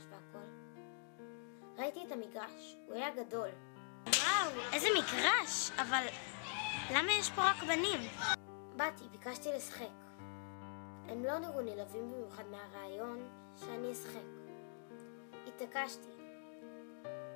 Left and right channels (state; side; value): silent; right; digital silence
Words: והכל. ראיתי את המגרש, הוא היה גדול. וואו, איזה מגרש, אבל למה יש פה רק בנים? באתי, ביקשתי לשחק. הם לא נראו נלהבים במיוחד מהרעיון שאני אשחק. התעקשתי.